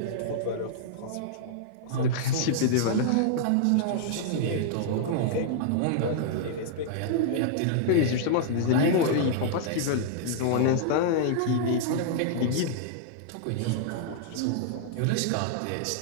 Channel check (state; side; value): different; both; correlation -0.01